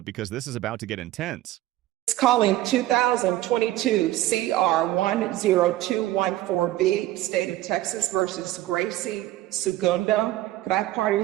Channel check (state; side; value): quieter; left; 15.6 dB